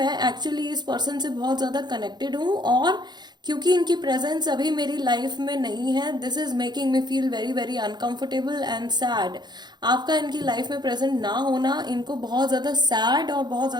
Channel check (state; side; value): late; left; 0.21 ms